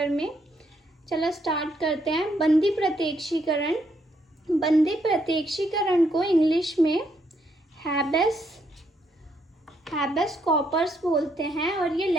में। चलो स्टार्ट करते हैं। बंदी प्रत्यक्षीकरण को इंग्लिश में हैबेस कॉर्पस बोलते हैं और ये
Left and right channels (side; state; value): both; normal; correlation 0.74